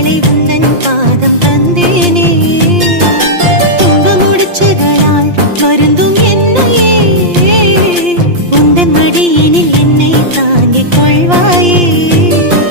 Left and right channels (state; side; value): late; left; 5.7 ms